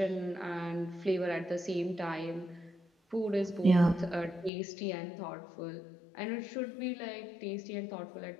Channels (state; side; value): drops out; right; at 4.5 s